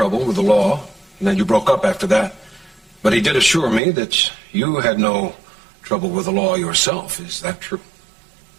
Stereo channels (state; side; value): drops out; left; at 3.8 s